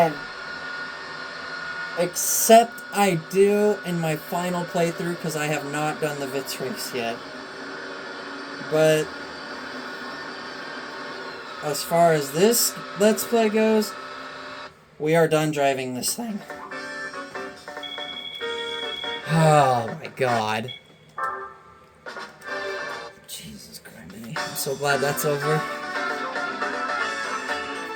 Except I do in my final playthrough, because I have not done the Vitz race yet. But as far as this Let's Play goes, we are done driving this thing. Oh my god. Jesus Christ. I'm so glad that's over.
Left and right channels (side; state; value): both; identical; correlation 1.00